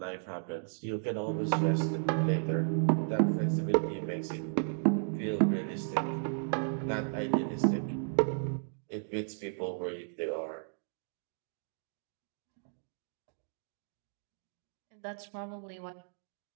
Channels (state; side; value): silent; left; digital silence